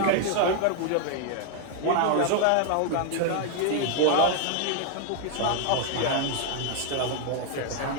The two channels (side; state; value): both; different; correlation 0.00